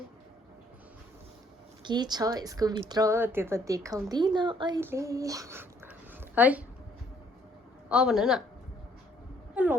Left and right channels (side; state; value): both; normal; correlation 0.65